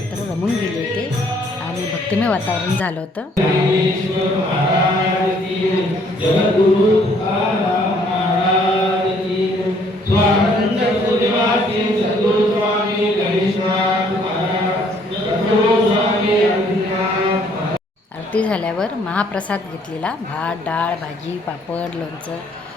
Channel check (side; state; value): both; normal; correlation 0.63